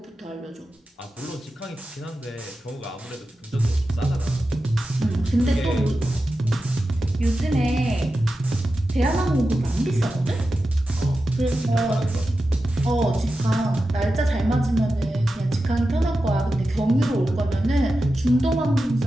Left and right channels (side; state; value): both; normal; correlation 0.92